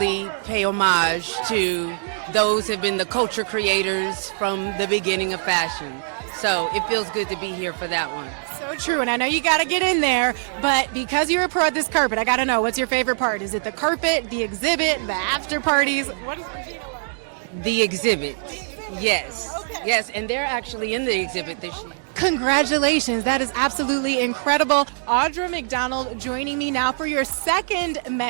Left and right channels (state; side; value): silent; left; digital silence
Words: pay homage to those who have been the culture creators from the beginning of fashion. So it feels good to be here for that one. So true, and I know you got to get in there, but because you're a pro at this carpet, I got to know, what's your favorite part? Is it the carpet, the exhibit, the after parties? What does Regina love? The exhibit. The exhibit? Yes. Okay. Yes, and they're actually in the exhibit this year. Congratulations. That is absolutely incredible. Audra McDonald joining me now for your second